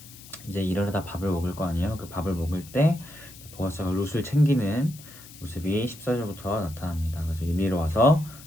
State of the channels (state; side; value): noise; left; hiss, 19 dB below the sound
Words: 이제 일하다 밥을 먹을 거 아니에요. 그 밥을 먹을 때 보아스가 룻을 챙기는 모습이 14절부터 나타납니다. 그래서 이리로 와서